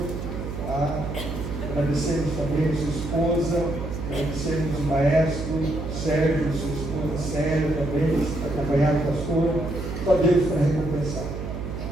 Agradecemos também a sua esposa, agradecemos o maestro Sérgio, sua esposa Célia também, acompanhado do pastor. Só Deus para recompensar.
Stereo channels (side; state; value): right; noise; hum, 6 dB below the sound